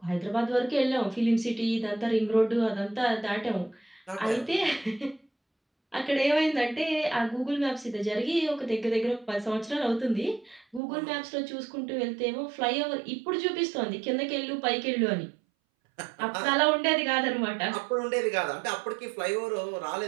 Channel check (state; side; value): drops out; left; at 10.8 s